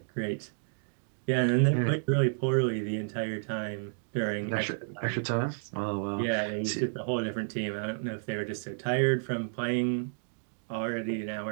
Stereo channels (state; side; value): silent; left; digital silence